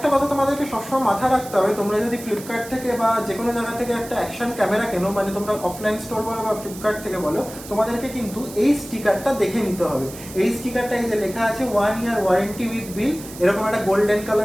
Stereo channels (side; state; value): right; noise; hiss, 15 dB below the sound